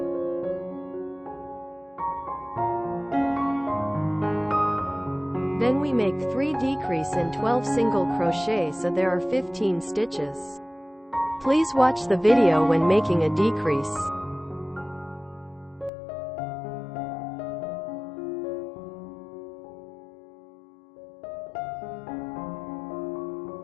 Then we make 3 decrease in 12 single crochet, so there are 15 stitches. Please watch the video when making a decrease.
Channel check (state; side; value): drops out; right; at 15.9 s